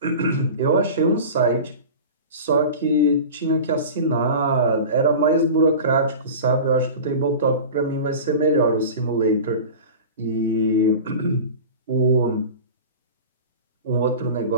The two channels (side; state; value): both; inverted; correlation -0.34